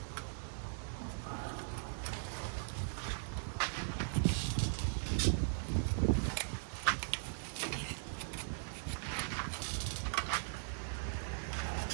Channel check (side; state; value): left; silent; digital silence